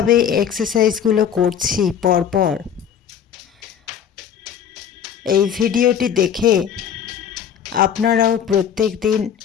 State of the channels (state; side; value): quieter; right; 8.5 dB